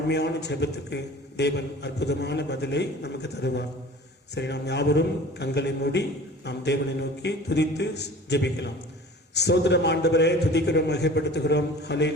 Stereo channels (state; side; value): normal; both; correlation 0.43